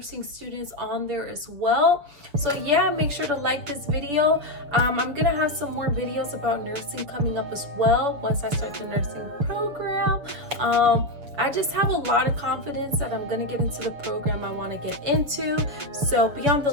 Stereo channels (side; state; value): left; late; 6.8 ms